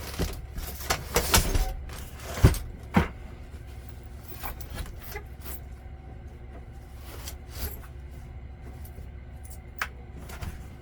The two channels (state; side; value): identical; both; correlation 1.00